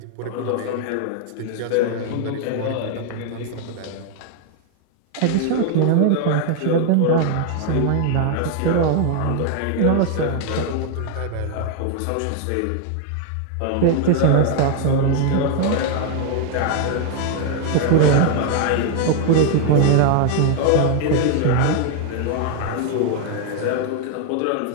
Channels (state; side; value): different; both; correlation 0.00